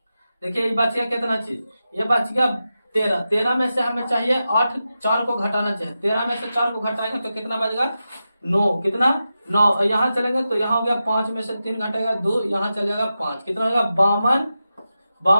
देखिए ये बच गया कितना चीज, ये बच गया 13। 13 में से हमें चाहिए 8, 4 को घटाना चाहिए। 13 में से 4 को घटाएंगे तो कितना बचेगा 9। कितना 9। यहाँ चलेंगे तो यहाँ हो गया 5 में से 3 घटेगा 2, यहाँ चलेगा 5। कितना होगा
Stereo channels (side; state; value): both; inverted; correlation -0.91